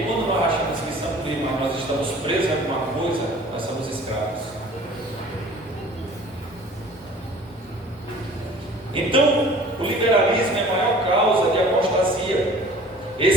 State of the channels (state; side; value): normal; both; correlation 0.48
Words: quando nós achamos que somos livres, mas nós estamos presos a alguma coisa, nós somos escravos. Então, o liberalismo é a maior causa de apostasia.